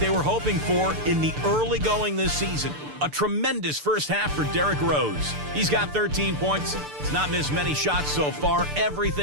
were hoping for in the early going this season. A tremendous first half for Derrick Rose. He's got 13 points. He's not missed many shots so far.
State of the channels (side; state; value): left; late; 6.8 ms